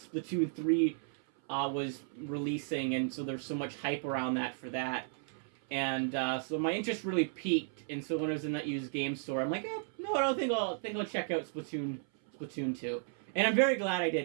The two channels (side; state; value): left; silent; 55 dB below the other